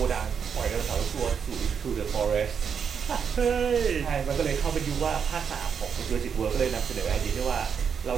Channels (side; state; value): left; quieter; 7.0 dB